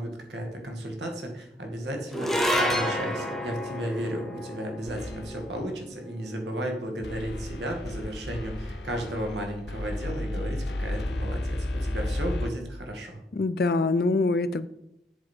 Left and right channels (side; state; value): both; normal; correlation 0.71